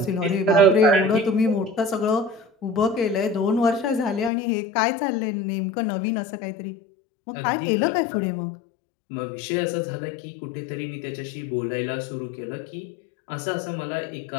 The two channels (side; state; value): right; drops out; at 4.3 s